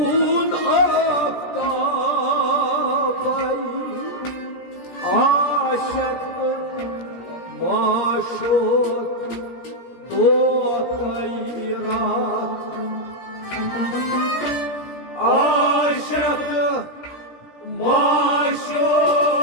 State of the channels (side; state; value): right; late; 17 ms